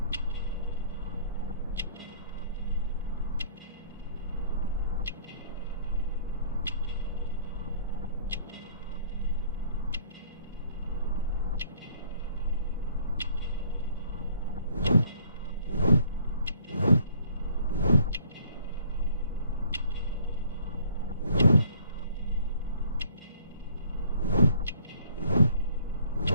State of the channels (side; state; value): both; inverted; correlation -0.58